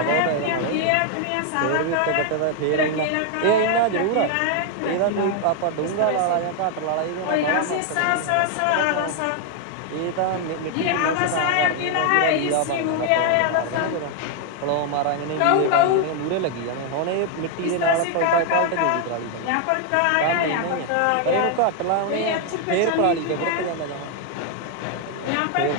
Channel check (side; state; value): both; different; correlation 0.00